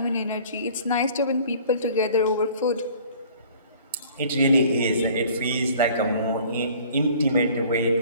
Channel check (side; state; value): both; inverted; correlation -0.51